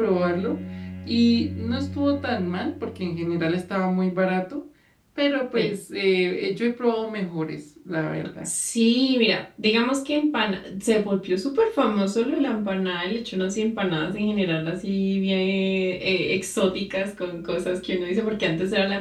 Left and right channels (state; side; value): identical; both; correlation 1.00